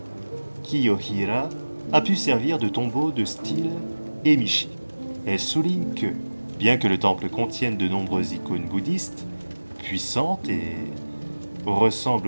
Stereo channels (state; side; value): inverted; both; correlation -1.00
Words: Kiyohira, a pu servir de tombeau de style Emishi. Elle souligne que, bien que le temple contienne de nombreuses icônes bouddhistes, puissantes et